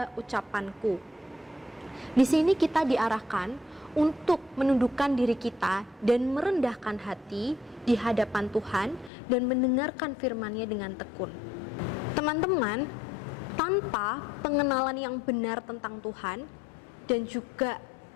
ucapanku. Di sini kita diarahkan untuk menundukkan diri kita dan merendahkan hati di hadapan Tuhan dan mendengarkan firman-Nya dengan tekun. Teman-teman, tanpa pengenalan yang benar tentang Tuhan dan juga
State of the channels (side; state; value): right; drops out; at 9.1 s